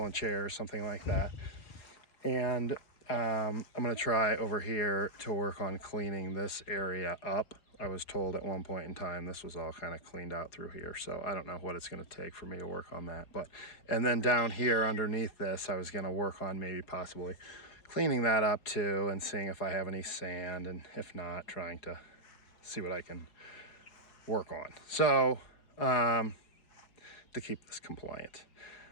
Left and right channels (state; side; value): late; right; 4.8 ms